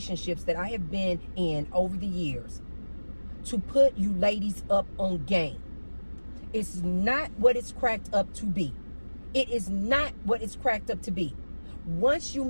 that I have been in over the years, to put you ladies up on game. It's not what it's cracked up to be. It is not what it's cracked up to be. Once you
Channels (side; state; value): both; inverted; correlation -1.00